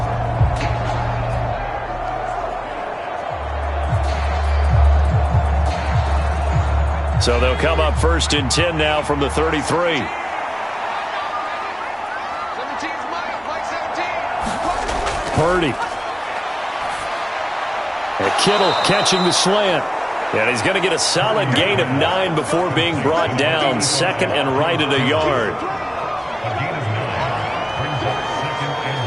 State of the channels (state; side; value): identical; both; correlation 1.00